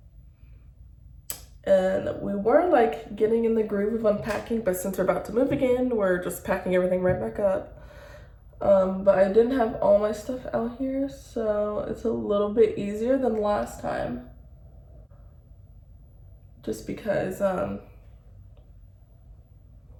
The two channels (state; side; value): identical; both; correlation 1.00